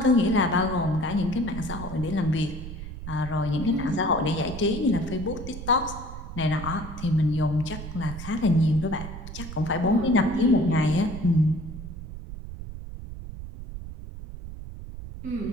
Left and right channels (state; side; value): noise; right; rumble, 10 dB below the sound